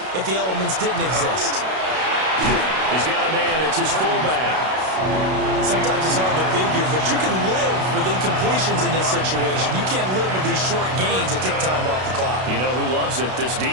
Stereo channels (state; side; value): late; left; 32 ms